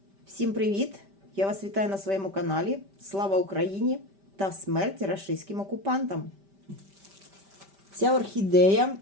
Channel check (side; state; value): left; late; 5.1 ms